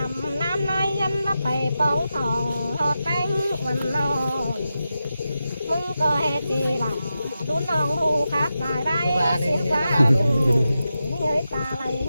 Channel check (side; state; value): both; inverted; correlation -0.90